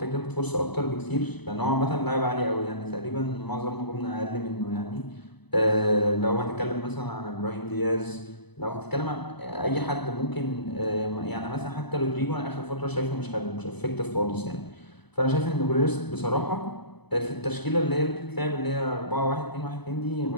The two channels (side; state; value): right; late; 0.99 ms